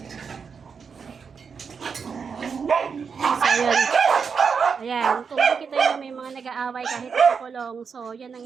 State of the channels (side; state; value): left; quieter; 6.0 dB